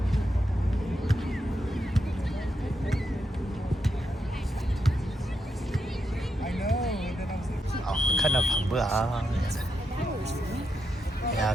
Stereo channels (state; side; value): normal; both; correlation 0.83